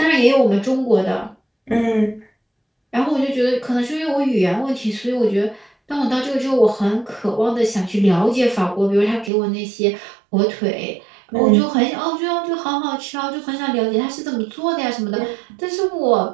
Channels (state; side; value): drops out; left; at 9.3 s